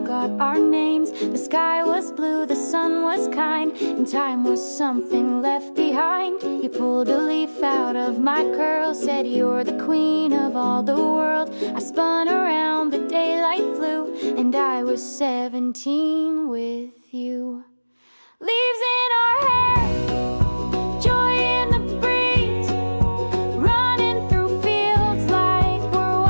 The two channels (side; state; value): both; inverted; correlation -1.00